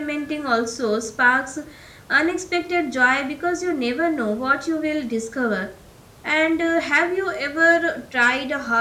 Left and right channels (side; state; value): both; identical; correlation 1.00